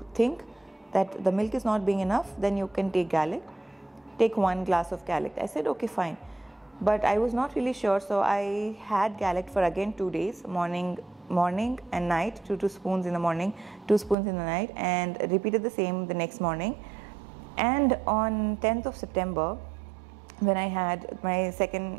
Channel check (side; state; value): left; drops out; at 14.2 s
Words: think that the milk is not being enough, then you can take Galact. Take 1 glass of Galact. I said, okay, fine. But I was not really sure, so I had Galact for again 2 days, morning and night, 2 spoons in the morning, 2 spoons in the night, and repeated the same the next morning. And on 10th of September, when I had my